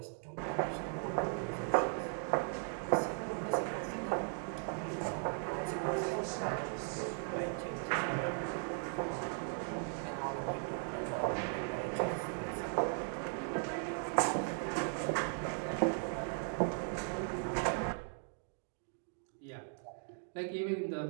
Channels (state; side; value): silent; left; 52 dB below the other